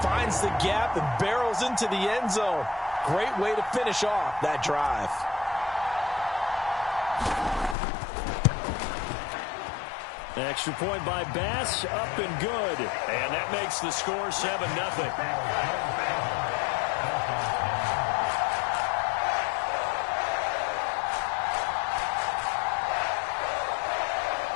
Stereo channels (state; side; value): drops out; right; at 7.8 s